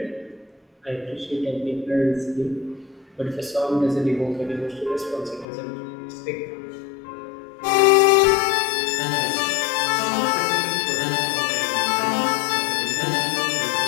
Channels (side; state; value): right; drops out; at 5.5 s